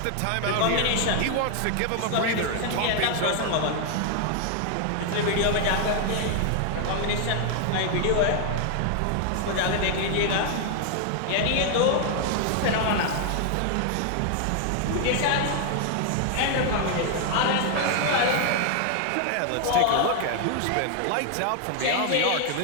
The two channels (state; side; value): different; both; correlation 0.00